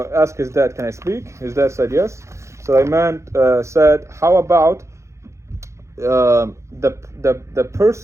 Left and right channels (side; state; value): left; late; 0.14 ms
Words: asked his dad, can I speak? His dad said yes. Sulayman said, how about the